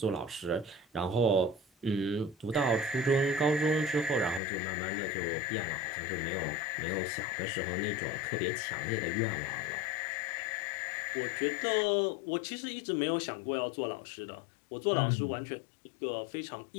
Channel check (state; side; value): drops out; right; at 4.4 s